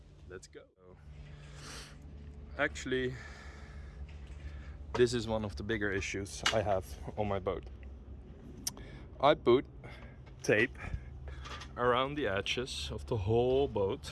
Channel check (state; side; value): identical; both; correlation 1.00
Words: let's go. Actually, this is one of the bigger issues I have on my boat. I put tape around the edges of the whole